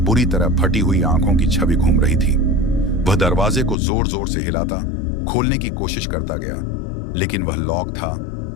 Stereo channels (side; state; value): right; drops out; at 3.8 s